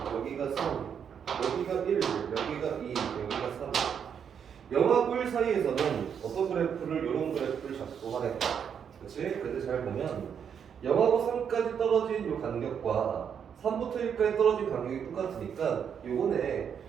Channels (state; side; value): quieter; left; 7.7 dB